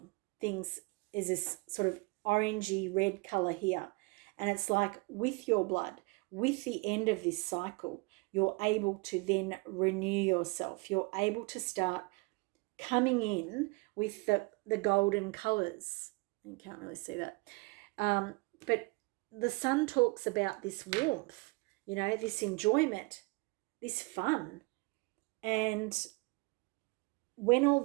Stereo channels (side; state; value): left; quieter; 27.7 dB